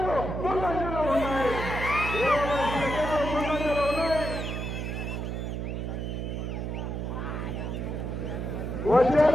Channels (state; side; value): noise; right; hum, 4 dB below the sound